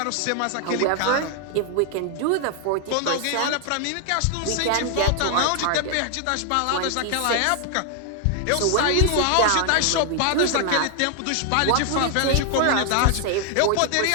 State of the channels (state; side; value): different; both; correlation 0.00